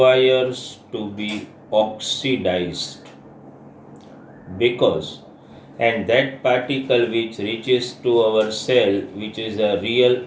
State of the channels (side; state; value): both; identical; correlation 1.00